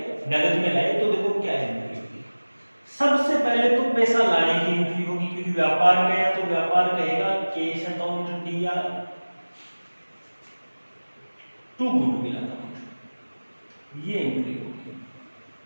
नगद में लाए। तो देखो क्या एंट्री होगी। सबसे पहले तो पैसा लाने की एंट्री होगी, क्योंकि व्यापार में है तो व्यापार कहेगा कैश अकाउंट दिया टू गुडविल अकाउंट, ये एंट्री होगी।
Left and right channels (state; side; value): inverted; both; correlation -1.00